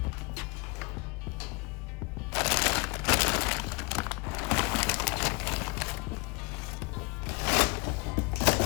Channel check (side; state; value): right; quieter; 29.7 dB